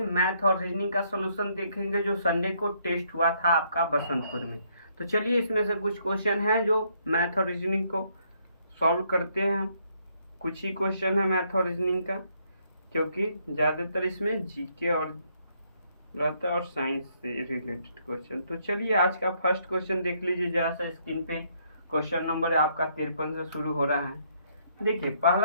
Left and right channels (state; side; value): inverted; both; correlation -0.70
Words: और रीजनिंग का सॉल्यूशन देखेंगे जो संडे को टेस्ट हुआ था आपका बसंतपुर में। तो चलिए, इसमें से कुछ क्वेश्चन हैं जो मैथ और रीजनिंग को सॉल्व करते हैं हम। कुछ ही क्वेश्चन है मैथ और रीजनिंग का, क्योंकि ज़्यादातर इसमें जीके और रहता है और साइंस से रिलेटेड क्वेश्चन। तो चलिए, आज का फर्स्ट क्वेश्चन देख लीजिए जहाँ से स्क्रीन पे। क्वेश्चन नंबर आपका 53 से शुरू हो रहा है। देखिए,